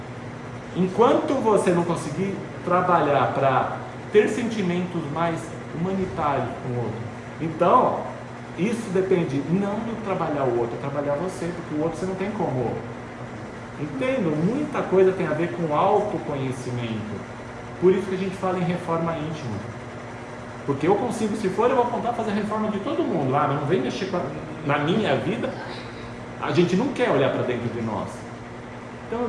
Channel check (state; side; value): identical; both; correlation 1.00